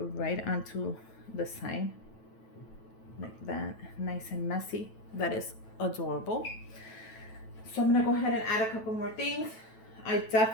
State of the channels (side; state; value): right; late; 9.1 ms